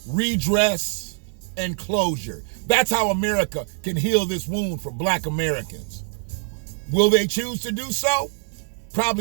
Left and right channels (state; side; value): silent; left; 55 dB below the other